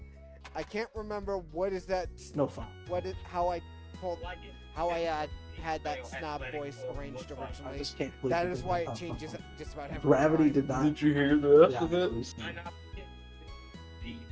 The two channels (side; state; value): both; identical; correlation 1.00